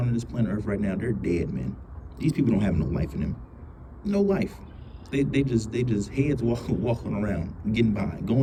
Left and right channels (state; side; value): identical; both; correlation 1.00